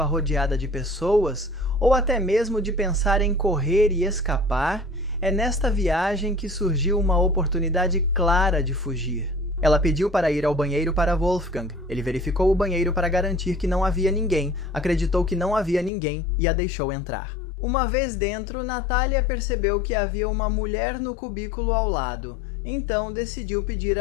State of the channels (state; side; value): drops out; right; at 15.9 s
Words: rodeada de pessoas, ou até mesmo de pensar em correr e escapar. É nesta viagem que surgiu uma oportunidade clara de fugir. Ela pediu para ir ao banheiro para Wolfgang. Ele verificou o banheiro para garantir que não havia ninguém, acreditou que não havia ninguém e a deixou entrar. Uma vez dentro, Natalia percebeu que havia uma mulher no cubículo ao lado, então decidiu pedir